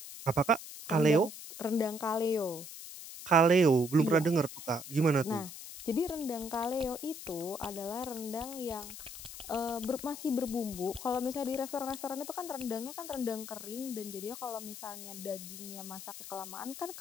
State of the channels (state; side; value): noise; left; hiss, 12 dB below the sound